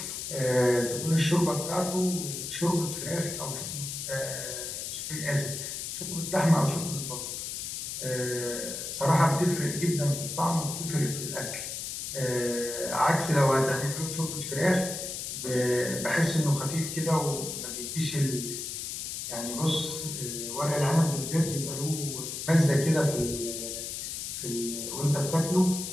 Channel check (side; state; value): left; noise; hiss, 5 dB below the sound